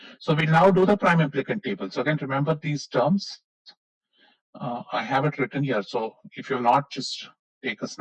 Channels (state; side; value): identical; both; correlation 1.00